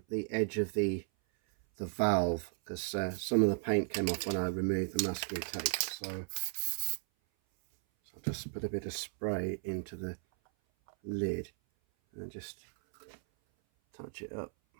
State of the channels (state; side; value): silent; left; 54 dB below the other